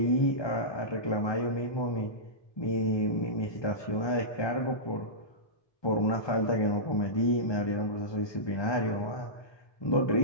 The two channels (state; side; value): late; right; 1.2 ms